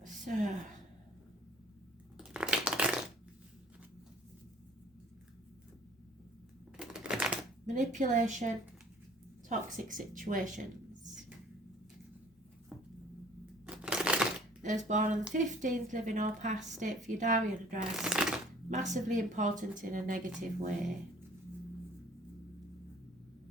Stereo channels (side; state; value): both; normal; correlation 0.52